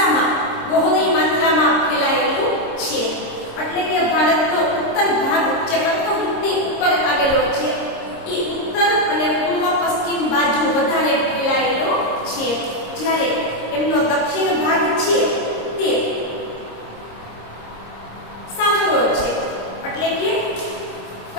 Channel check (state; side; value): late; right; 26 ms